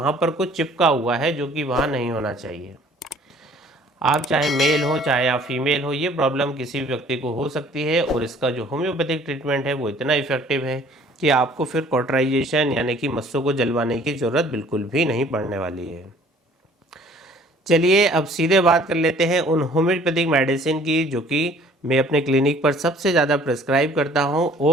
पर कुछ चिपका हुआ है जो कि वहाँ नहीं होना चाहिए। आप चाहे मेल हो चाहे आप फीमेल हो, ये प्रॉब्लम किसी भी व्यक्ति को हो सकती है और इसका जो होम्योपैथिक ट्रीटमेंट है वो इतना इफेक्टिव है कि आपको फिर कॉटराइजेशन यानी कि मस्सों को जलवाने की ज़रूरत बिल्कुल भी नहीं पड़ने वाली है। चलिए अब सीधे बात कर लेते हैं उन होम्योपैथिक मेडिसिन की जो कि मैं अपने क्लिनिक पर सबसे ज़्यादा प्रिस्क्राइब करता हूं।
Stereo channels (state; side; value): normal; both; correlation 0.54